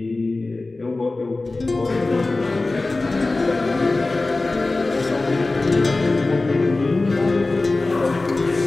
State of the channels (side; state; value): right; quieter; 3.2 dB